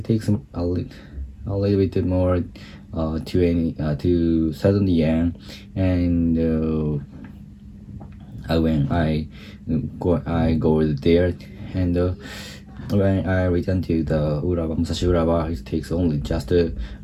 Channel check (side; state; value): both; identical; correlation 1.00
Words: bit more 2,000 yen, and when I go there, and when I return to the Musashi Urawa, it takes only just